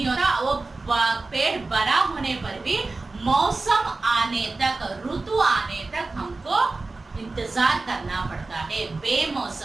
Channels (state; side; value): quieter; left; 3.5 dB